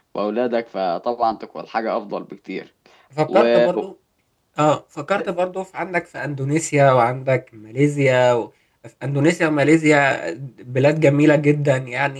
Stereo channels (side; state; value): both; identical; correlation 1.00